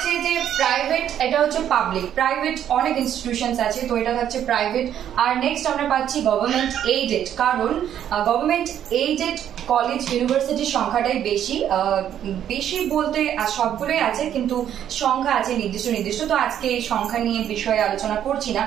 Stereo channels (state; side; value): quieter; left; 10.2 dB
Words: যে প্রাইভেট, এটা হচ্ছে পাবলিক। প্রাইভেট অনেক ইনস্টিটিউশন আছে, তো এটা হচ্ছে প্রাইভেট। আর নেক্সট আমরা পাচ্ছি গভর্নমেন্ট এইডেড, কারণ গভর্নমেন্ট এইডেড কলেজ ইউনিভার্সিটির সংখ্যাটাই বেশি বলতে সবগুলোই আছে, কিন্তু সংখ্যা আছে নির্দিষ্ট। তো আজকে এই সংখ্যা নিয়ে বিষয়ে আলোচনা করছি না,